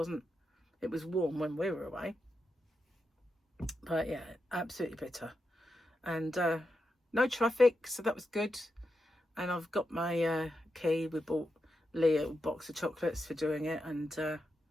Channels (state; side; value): normal; both; correlation 0.87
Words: warm when we were away. But yeah, absolutely bitter. And no traffic, so that was good. And I've got my key. We bought Lee a box of chocolates for doing it. And